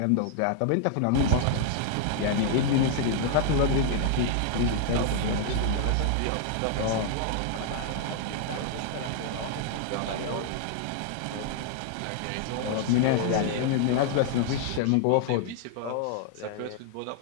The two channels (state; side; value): different; both; correlation 0.00